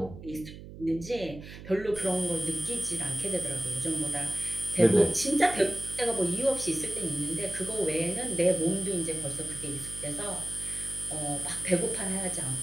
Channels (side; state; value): right; noise; hum, 14 dB below the sound